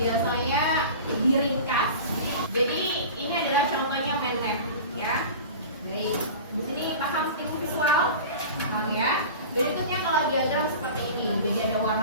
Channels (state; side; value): inverted; both; correlation -0.35